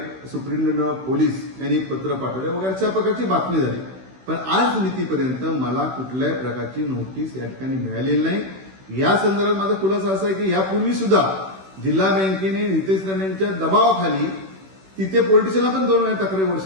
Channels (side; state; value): left; late; 16 ms